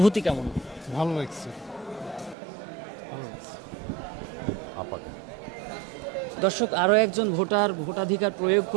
কেমন? ভালো লাগছে, ভালো লাগছে। দর্শক, আরও একজন ভোটার ভোটাধিকার প্রয়োগ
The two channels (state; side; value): drops out; left; at 2.4 s